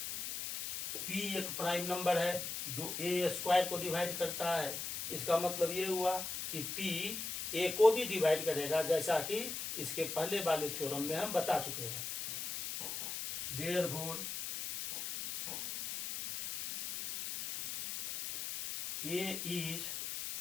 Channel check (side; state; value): left; noise; hiss, 5 dB below the sound